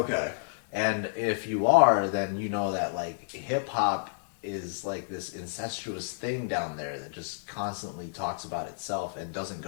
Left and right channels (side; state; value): right; silent; digital silence